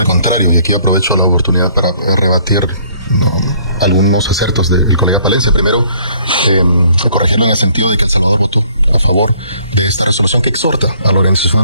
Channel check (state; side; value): inverted; both; correlation -0.61